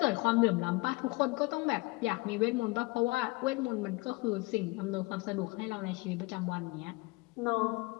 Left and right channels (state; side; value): quieter; right; 24.4 dB